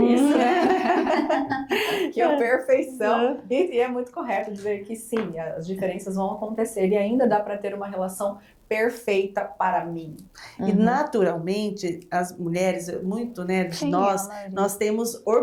isso, né? Que é a perfeição. E é muito correto dizer que sim, as diferenças vão acontecer e ainda dá para ter uma relação perfeita para mim. E naturalmente, as mulheres, muito, né, de nós temos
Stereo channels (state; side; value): identical; both; correlation 1.00